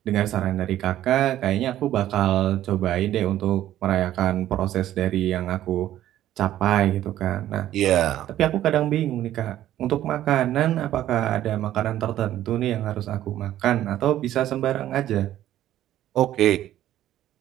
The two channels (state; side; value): quieter; left; 12.8 dB